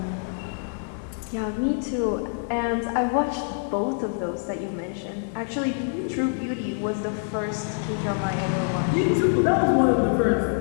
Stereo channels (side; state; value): right; silent; digital silence